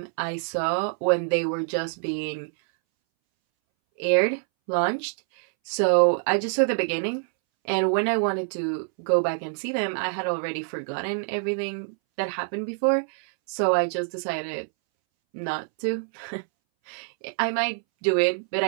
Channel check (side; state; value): left; silent; 61 dB below the other